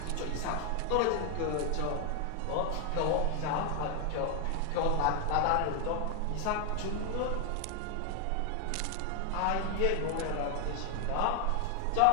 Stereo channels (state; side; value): different; both; correlation 0.00